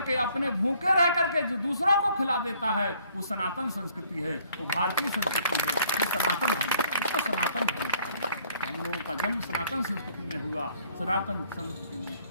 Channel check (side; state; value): both; inverted; correlation -0.62